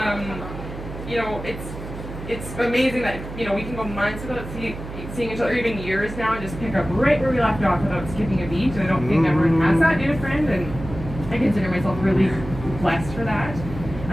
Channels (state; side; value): noise; right; hum, 10 dB below the sound